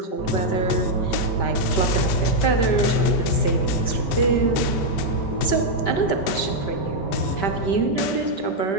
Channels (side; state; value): right; late; 5.2 ms